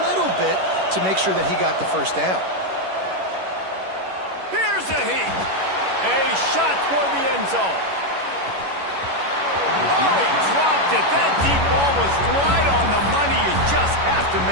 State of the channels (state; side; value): late; left; 11 ms